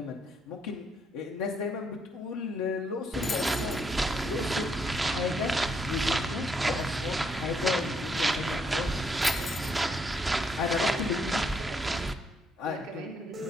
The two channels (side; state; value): both; normal; correlation 0.73